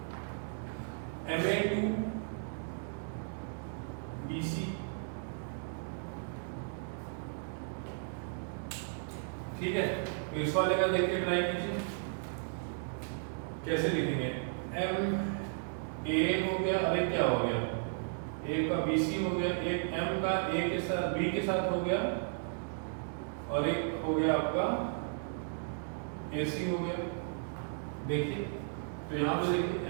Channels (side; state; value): left; silent; digital silence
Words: MA2 BC, ठीक है। तो इस वाले का देख के ट्राई कीजिए कैसे लिखेंगे। एम ए हो गया, अरे क्या हो गया, ए का BC हो गया, एक एम का ए के साथ बी के साथ हो गया, और एक हो गया आपका AC हो गया। देखिए तो यहाँ पे देखिए